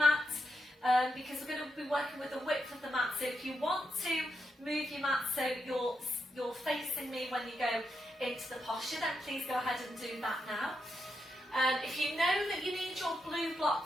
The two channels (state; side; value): normal; both; correlation 0.83